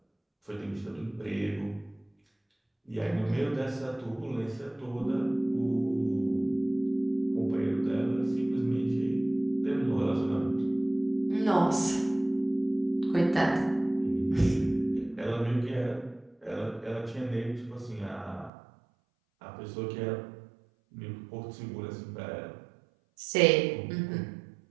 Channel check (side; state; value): left; drops out; at 18.5 s